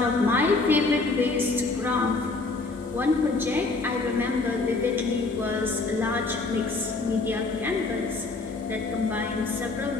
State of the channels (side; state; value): right; quieter; 3.6 dB